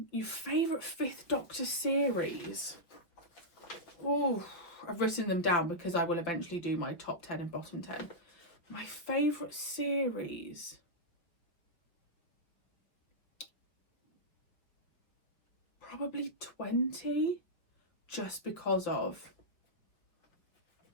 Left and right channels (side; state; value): right; late; 5.5 ms